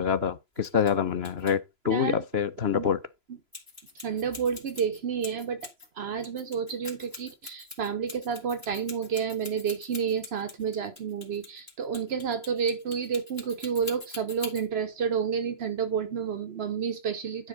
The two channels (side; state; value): left; late; 3.0 ms